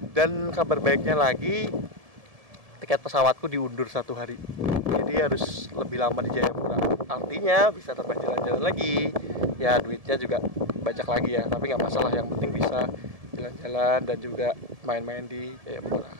Dan kabar baiknya lagi, tiket pesawatku diundur 1 hari. Jadi harus lebih lama di Jayapura. Artinya bisa terbang jalan-jalan lagi. Ya duitnya juga banyak lagi ya, tapi nggak masalah. Yang penting bisa jalan-jalan dan juga main-main di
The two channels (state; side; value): late; left; 1.7 ms